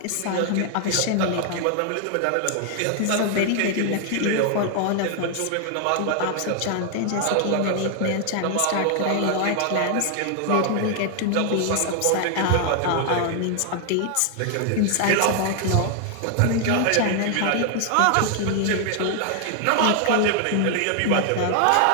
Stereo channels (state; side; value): different; both; correlation 0.00